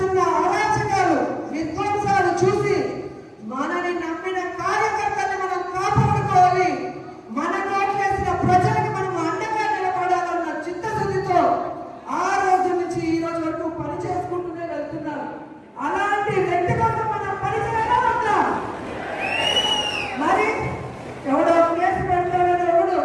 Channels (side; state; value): both; identical; correlation 1.00